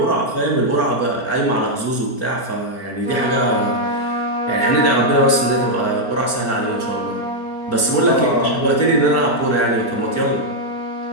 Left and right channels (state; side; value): late; right; 4.4 ms